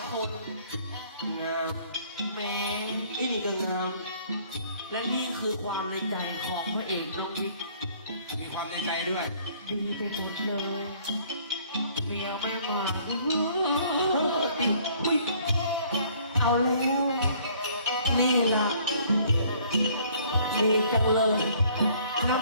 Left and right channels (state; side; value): inverted; both; correlation -0.58